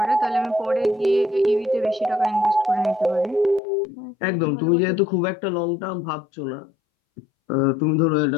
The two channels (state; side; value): drops out; right; at 3.6 s